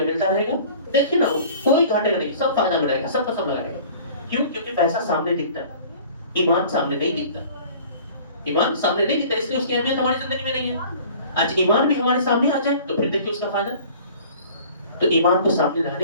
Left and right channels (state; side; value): inverted; both; correlation -0.47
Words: ملتا رہے گا, دیکھیے نا وہ کوئی گھاٹے گا نہیں, سب فائدہ ملے گا, سب کا سب لگائے گا. کیوں؟ کیونکہ پیسہ سامنے دکھتا ہے, ایمان سامنے نہیں دکھتا. ایمان سامنے نہیں دکھتا, اس لیے اس کی اہمیت ہماری زندگی میں نہیں ہے. آج ایمان بھی ہمارے سامنے آ جائے تو پھر دیکھیے اس کا فائدہ. تو ایمان کو سامنے